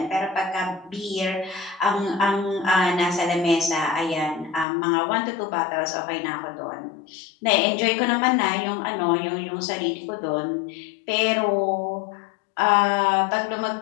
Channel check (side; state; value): right; drops out; at 4.7 s